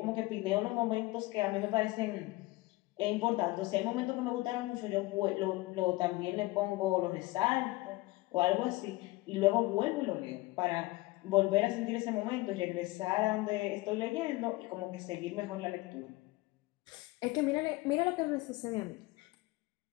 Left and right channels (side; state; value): right; quieter; 20.8 dB